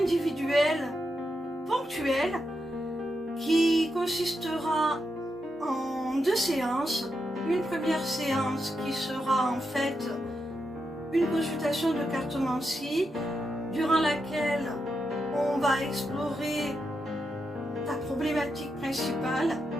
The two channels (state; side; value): normal; both; correlation 0.85